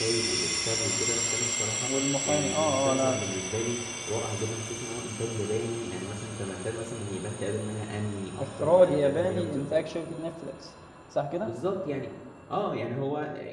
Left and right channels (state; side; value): identical; both; correlation 1.00